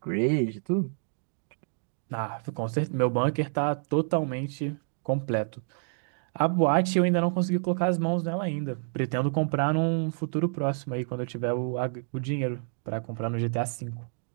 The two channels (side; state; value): left; silent; 57 dB below the other